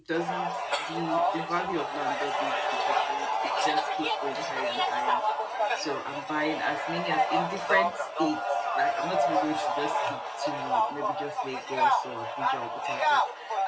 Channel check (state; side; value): identical; both; correlation 1.00